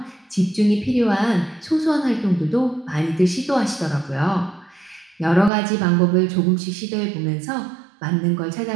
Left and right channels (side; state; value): left; drops out; at 5.5 s